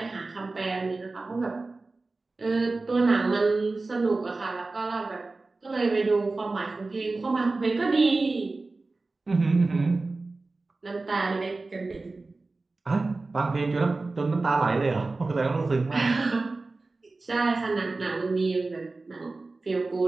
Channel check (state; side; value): quieter; left; 3.5 dB